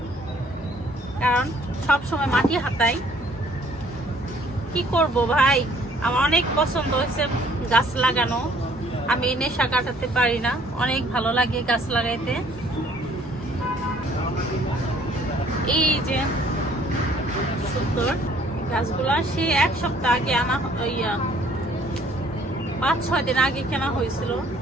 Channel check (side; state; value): both; normal; correlation 0.59